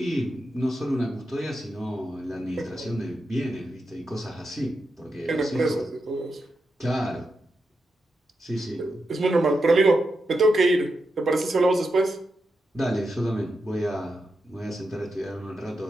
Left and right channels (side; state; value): both; normal; correlation 0.87